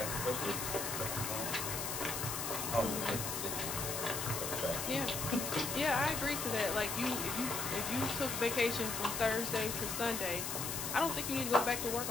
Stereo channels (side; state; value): left; noise; hiss, 3 dB below the sound